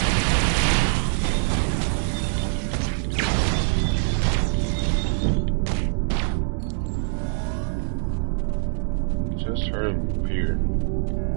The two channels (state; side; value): silent; left; digital silence